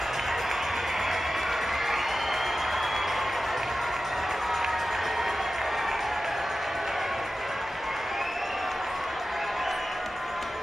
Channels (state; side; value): normal; both; correlation 0.94